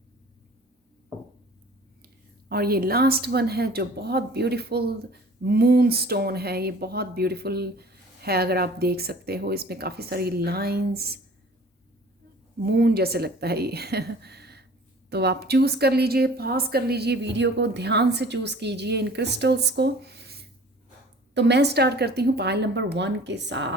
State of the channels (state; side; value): normal; both; correlation 0.48